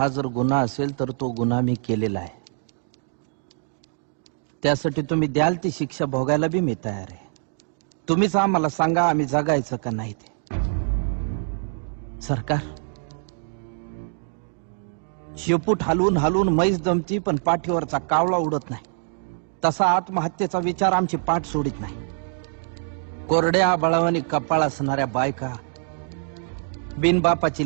जर गुन्हा असेल तर तो गुन्हा मी केलेला आहे. त्यासाठी तुम्ही द्याल ती शिक्षा भोगायला बी मी तयार आहे. तुम्हीच आम्हाला सांगा आम्ही जगायचं का नाही ते. सरकार शेपूट हलवून हलवून म्हैस दमती पण पाठीवरचा कावळा उडत नाही. तसा आत्महत्येचा विचार आमची पाठ सोडित नाही. कोरड्या आबाळावानी कपाळ असणाऱ्या बायका,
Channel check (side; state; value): left; silent; 62 dB below the other